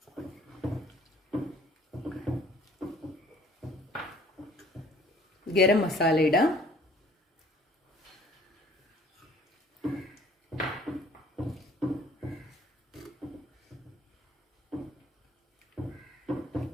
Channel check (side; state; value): both; normal; correlation 0.56